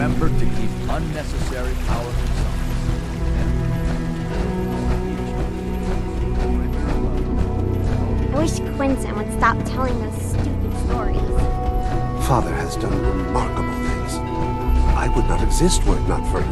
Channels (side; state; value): both; identical; correlation 1.00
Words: to keep unnecessary power I wish Quentin would stop telling those stupid stories. Father has done remarkable things. I would not exist were it not for